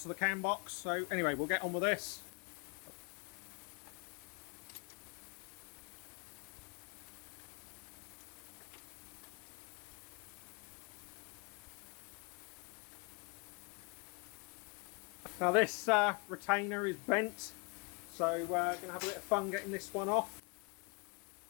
of the cam box. So anyway, we'll get on with this. Now this retainer is bent, so we're going to have a bit of fun getting this one off.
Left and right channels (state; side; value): quieter; right; 32.1 dB